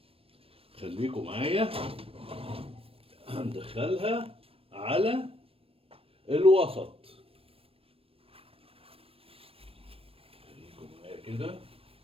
خليكم معايا، هندخلها على الوسط. خليكم معايا كده،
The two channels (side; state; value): left; late; 0.28 ms